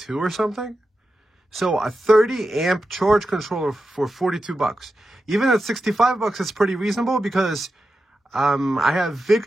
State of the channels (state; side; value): normal; both; correlation 0.90